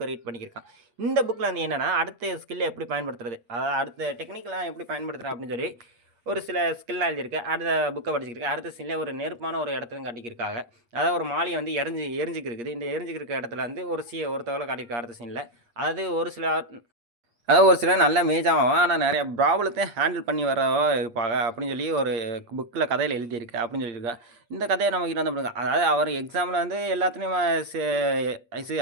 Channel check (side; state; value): left; late; 8.4 ms